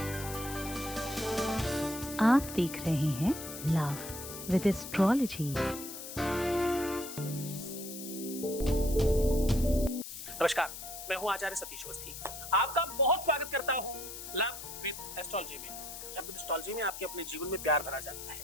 आप देख रहे हैं लव विद एस्ट्रोलॉजी। नमस्कार, मैं हूं आचार्य सतीश अवस्थी। आपका बहुत स्वागत करता हूं लव विद एस्ट्रोलॉजी में। लव विद एस्ट्रोलॉजी में आपके अपने जीवन में प्यार भरा जाता है।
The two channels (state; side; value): noise; left; hiss, 10 dB below the sound